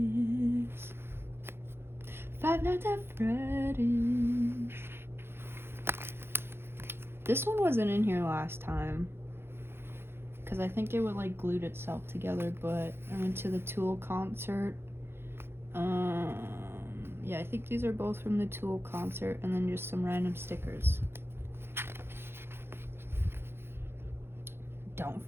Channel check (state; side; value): late; left; 0.11 ms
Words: Five Nights at Freddy's. This one wasn't in here last time, because I think it would like glued itself together, but I went to the Tool concert. Yeah, I think these are both from the Tool concert, and then just some random stickers. Don't